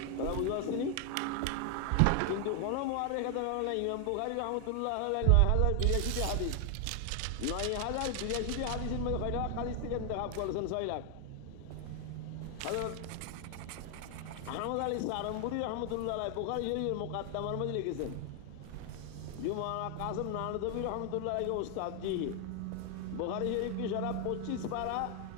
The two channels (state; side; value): different; both; correlation 0.00